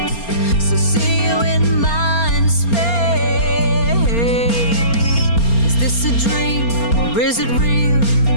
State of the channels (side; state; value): right; late; 4.3 ms